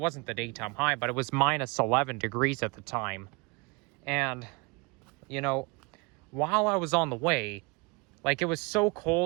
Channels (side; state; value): left; quieter; 28.3 dB